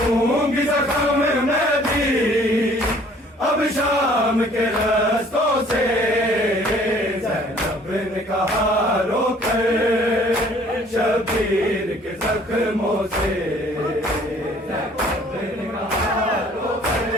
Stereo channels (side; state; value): both; normal; correlation 0.56